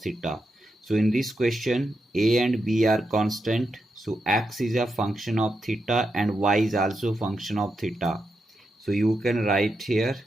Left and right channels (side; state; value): both; normal; correlation 0.85